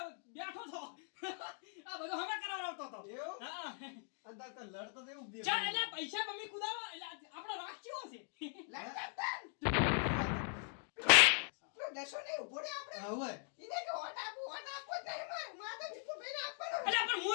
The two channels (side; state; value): right; silent; 51 dB below the other